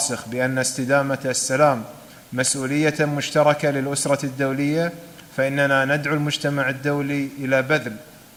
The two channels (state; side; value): identical; both; correlation 1.00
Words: بأن استدامة السلام مسؤولية مشتركة للأسرة الدولية، فإننا ندعو المجتمع الدولي إلى بذل